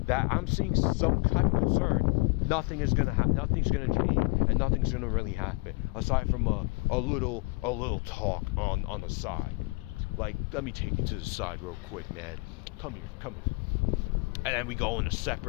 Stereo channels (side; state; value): right; quieter; 27.0 dB